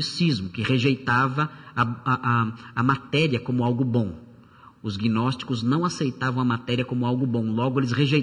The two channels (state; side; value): identical; both; correlation 1.00